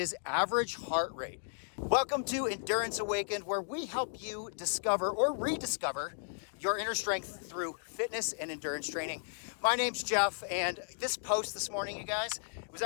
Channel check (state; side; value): silent; right; digital silence